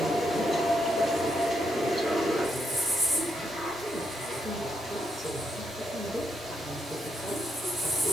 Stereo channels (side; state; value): both; normal; correlation 0.79